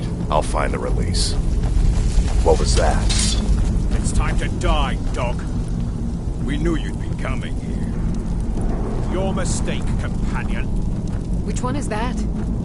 I'll find the release. What was that? It's time to die, dog. We knew you'd be coming here. Your mistake, companion. Which one is that?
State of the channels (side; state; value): both; identical; correlation 1.00